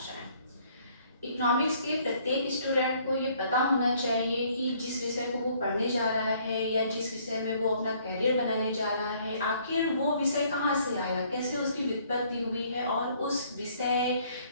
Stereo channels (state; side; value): inverted; both; correlation -0.62